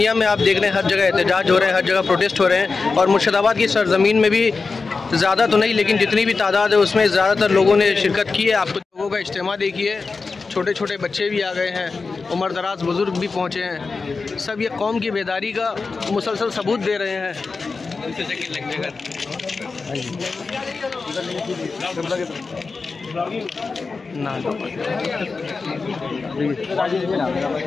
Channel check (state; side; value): quieter; right; 4.3 dB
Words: में आप देख रहे हैं हर जगह एहतजाज हो रहे हैं, हर जगह प्रोटेस्ट हो रहे हैं। और मुर्शिदाबाद की सरजमीन में भी ज़्यादा तो नहीं, लेकिन जितनी भी तादाद है उसमें ज़्यादातर लोगों ने शिरकत की है। आपको लोगों का इज्तिमा देखिए, छोटे छोटे बच्चे भी आ गए हैं, उम्र दराज बुज़ुर्ग भी पहुँचे हैं। सब ये कौम की बेदारी का मुसलसल सबूत दे रहे हैं।